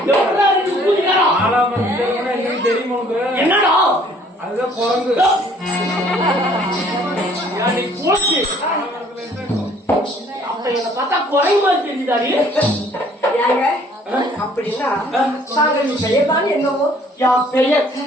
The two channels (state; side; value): normal; both; correlation 0.58